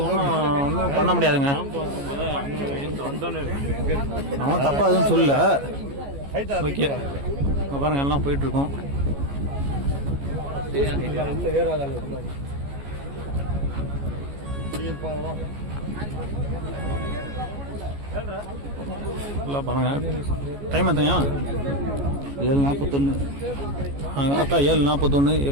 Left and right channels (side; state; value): left; late; 14 ms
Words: ஒன்றும் பண்ண முடியாதுங்க. அவன் தப்பா எதுவும் சொல்லல. ஓகே, பாருங்க எல்லாம் போயிட்டு இருக்கோம். பாருங்க டைம் எத்தையா? 7:41. கரெக்டாக 7:41